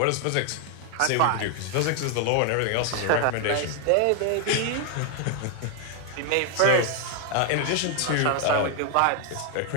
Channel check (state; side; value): different; both; correlation 0.00